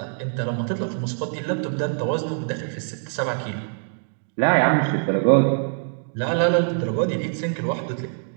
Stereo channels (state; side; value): silent; left; 63 dB below the other